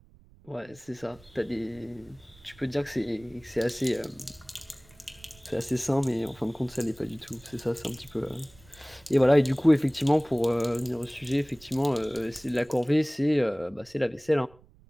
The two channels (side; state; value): right; noise; rumble, 26 dB below the sound